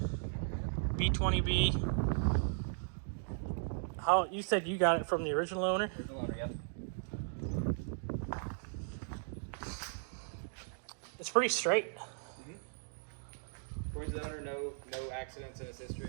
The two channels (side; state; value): left; silent; digital silence